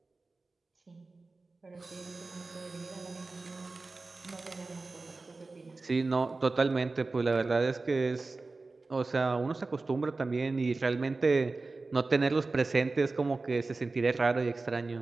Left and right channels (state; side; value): quieter; left; 3.6 dB